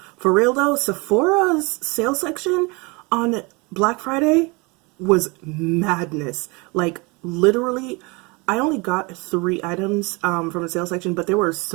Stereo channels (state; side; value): quieter; left; 27.5 dB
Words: for real though, Sephora's sale section on Black Friday was madness. Like literally, I only got 3 items from the sale section, but there were